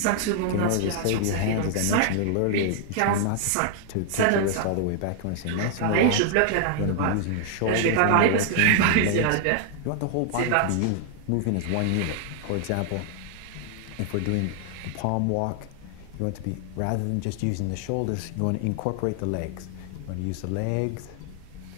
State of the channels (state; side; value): different; both; correlation 0.00